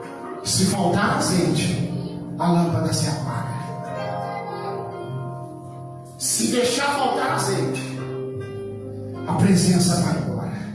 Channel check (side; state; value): both; identical; correlation 1.00